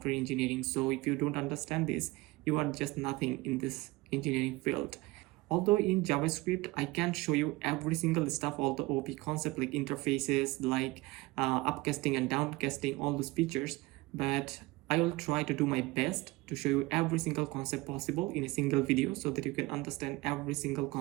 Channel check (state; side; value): quieter; left; 21.4 dB